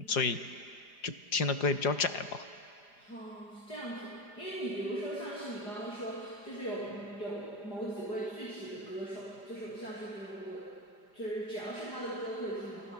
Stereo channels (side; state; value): right; late; 4.9 ms